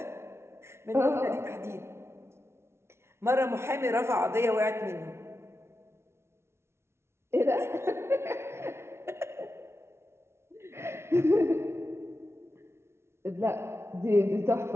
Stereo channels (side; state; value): left; late; 0.13 ms